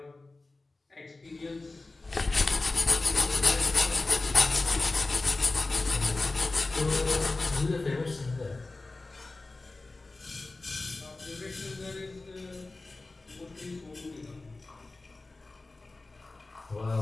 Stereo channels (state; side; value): quieter; right; 3.3 dB